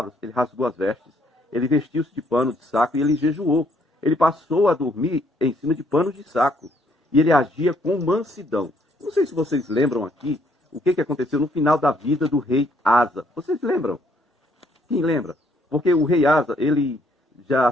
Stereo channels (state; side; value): normal; both; correlation 0.68